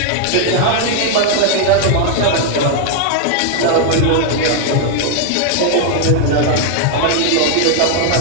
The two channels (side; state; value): both; different; correlation 0.00